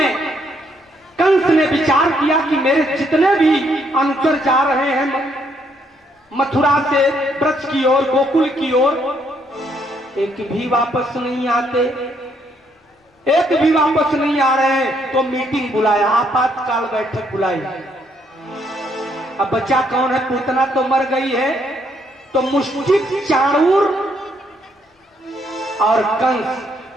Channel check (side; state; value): both; normal; correlation 0.72